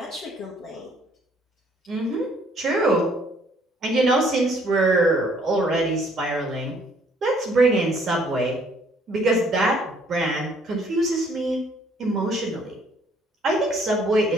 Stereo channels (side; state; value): both; normal; correlation 0.63